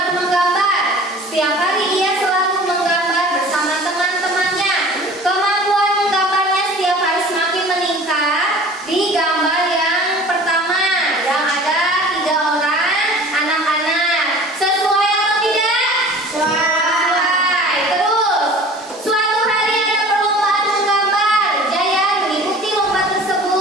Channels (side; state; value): both; normal; correlation 0.44